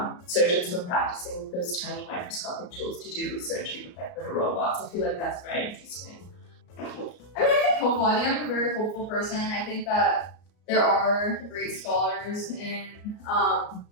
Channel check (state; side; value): late; right; 34 ms